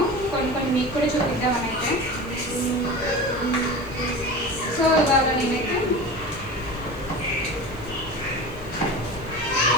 కొన్ని మీకు కూడా చూపిద్దామని అయితే. సో ఇవాళ నేనైతే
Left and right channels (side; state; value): right; noise; hiss, 25 dB below the sound